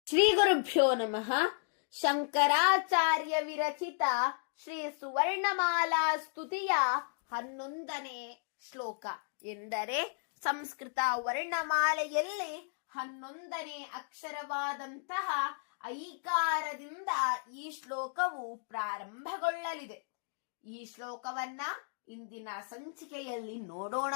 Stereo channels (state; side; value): silent; right; digital silence